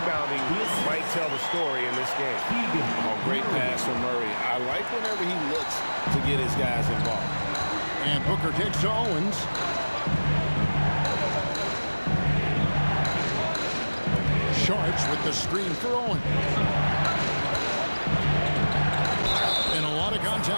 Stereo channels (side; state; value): both; inverted; correlation -1.00